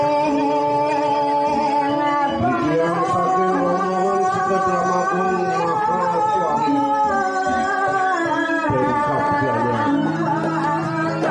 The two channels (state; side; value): identical; both; correlation 1.00